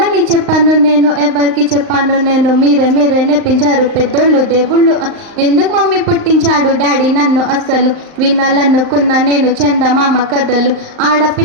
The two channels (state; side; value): late; left; 38 ms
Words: చెప్పాను నేను, ఎవరికి చెప్పాను నేను, మీరే మీరే నేర్పించారు పెద్దోళ్ళు దేవుళ్ళు, ఎందుకు మమ్మీ పుట్టించాడు డాడీ నన్ను, అస్సలు వినాలనుకున్నా నేను చందమామ కథలు,